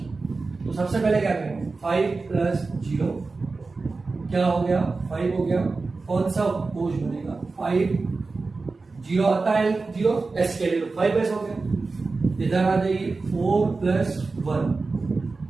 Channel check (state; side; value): quieter; left; 3.9 dB